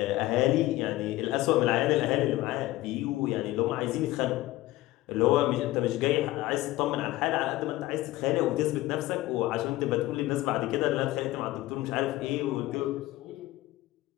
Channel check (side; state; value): right; quieter; 17.3 dB